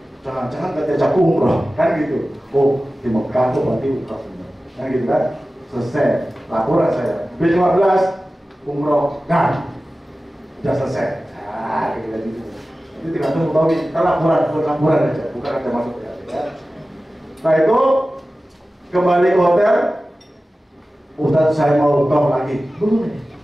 Jangan-jangan nggak diajak umroh, kan gitu. Oh di Mekah tuh berarti umroh bener, kan gitu kan? Selesai laporan saya, 15 umroh kan, sudah selesai. Gitu. Itu tidak tahu tahu kita laporan aja, bukan ada masuk ya. Nah itu kembali ke hotel. Ustaz saya mau toh lagi, boleh.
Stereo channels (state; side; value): normal; both; correlation 0.96